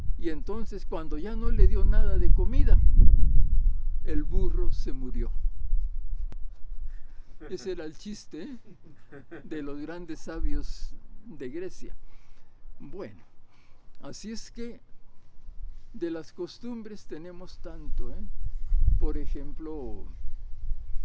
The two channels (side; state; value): both; identical; correlation 1.00